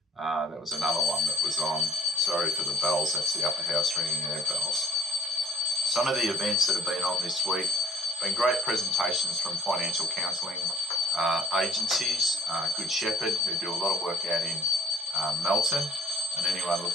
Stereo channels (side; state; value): both; normal; correlation 0.52